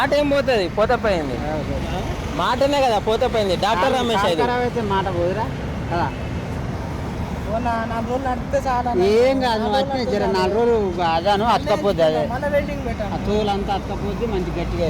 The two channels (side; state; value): both; identical; correlation 1.00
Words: ఏం పోతుంది పోతే పోయింది మాటనే కదా పోతే పోయింది డాక్టర్ రమేష్ అయితే ఖరాబ్ అయితే మాట పోదురా కదా 4 రోజులు నడిపితే చాలా ఏం కాదు నువ్వు అట్నే జర 4 రోజులు అదాను అతకపోద్ది అదే మన వెల్డింగ్ పెట్టాను ఆ తోలంతా అతకపోద్ది మంచి